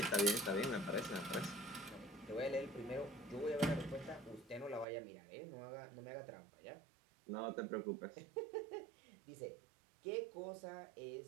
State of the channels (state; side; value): drops out; left; at 4.9 s